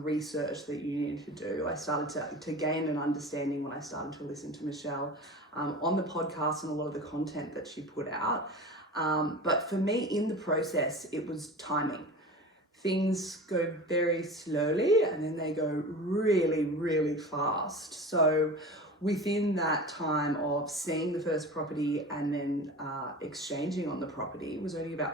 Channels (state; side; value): normal; both; correlation 0.34